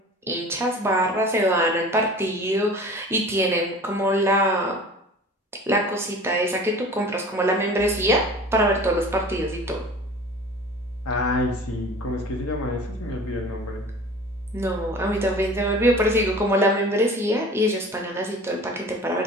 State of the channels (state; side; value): normal; both; correlation 0.42